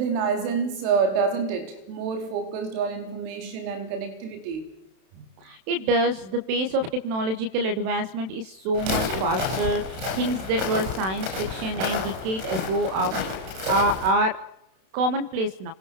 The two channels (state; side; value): late; left; 32 ms